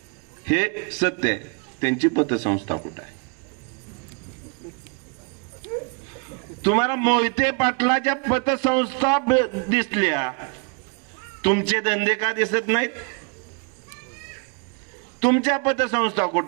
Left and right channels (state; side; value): quieter; left; 34.2 dB